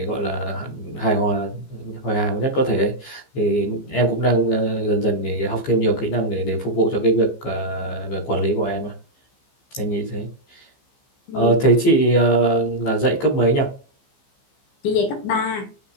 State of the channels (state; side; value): late; right; 15 ms